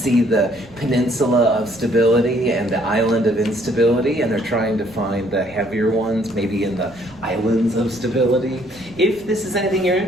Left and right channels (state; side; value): noise; right; rumble, 24 dB below the sound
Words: the peninsula of stability and the island of instability, and they're trying to find the heavier ones, maybe in the islands of stability. If this is anything you're